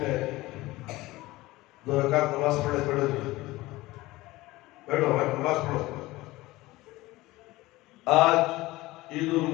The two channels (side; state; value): right; quieter; 19.2 dB